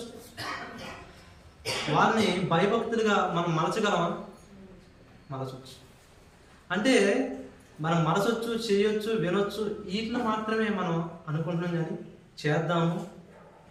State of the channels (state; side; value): identical; both; correlation 1.00